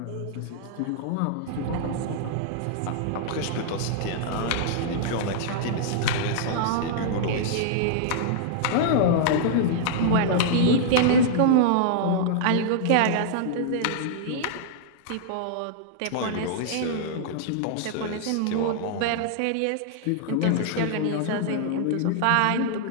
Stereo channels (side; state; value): both; different; correlation -0.01